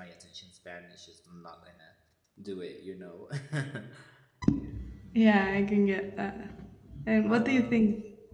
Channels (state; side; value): identical; both; correlation 1.00